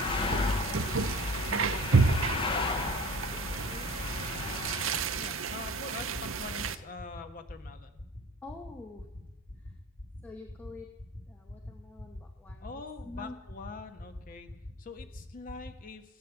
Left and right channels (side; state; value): both; normal; correlation 0.43